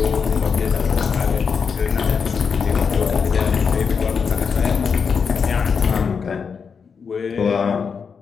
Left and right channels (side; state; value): right; quieter; 5.9 dB